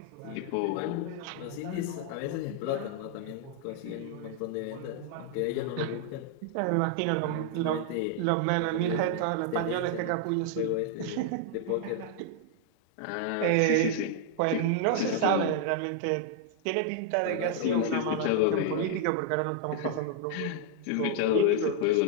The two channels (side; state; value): both; different; correlation 0.00